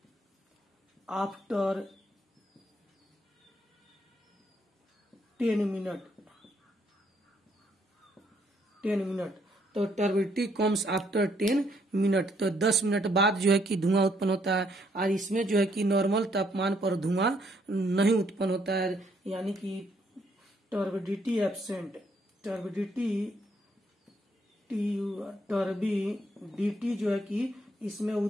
आफ्टर 10 मिनट, तो टर्बिडिटी कम्स आफ्टर 10 मिनट, तो 10 मिनट बाद जो है कि धुआं उत्पन्न होता है। और इसमें जो है कि नॉर्मल तापमान पर धुआं नहीं उत्पन्न होता है, यानी कि टर्बिडिटी एब्सेंट, टर्बिडिटी जो है कि इसमें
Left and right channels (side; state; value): both; normal; correlation 0.71